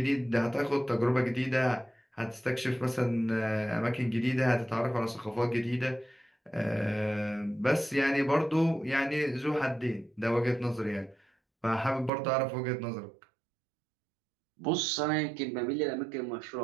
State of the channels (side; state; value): left; drops out; at 12.1 s